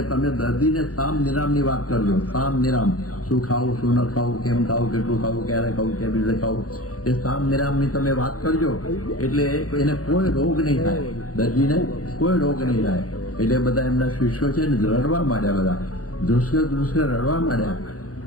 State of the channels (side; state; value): right; late; 0.66 ms